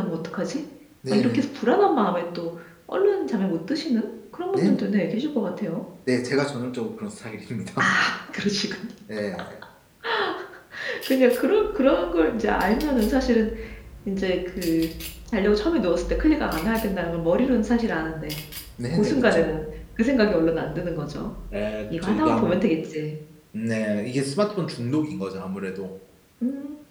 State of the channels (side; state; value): both; identical; correlation 1.00